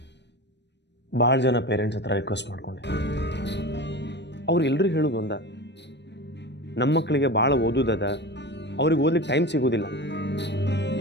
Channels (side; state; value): right; late; 0.51 ms